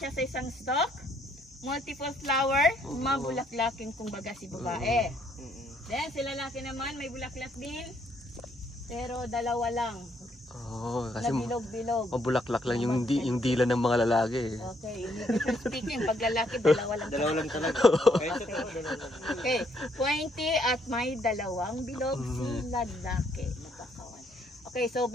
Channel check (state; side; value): normal; both; correlation 0.70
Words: sa isang stalk. Multiple flower, mabulaklaking kumbaga si babae. Then si lalaki naman may bulaklak din, pero dalawa lang. Kasi bilog-bilog. mabulaklak lang yung dila ng mga lalaki. Okay, speaking, pag lalaki, dalawa lang. Dalawa lang talaga. Okay, pointy at may dalawang bilog si lalaki. Magkakawan. Okay, so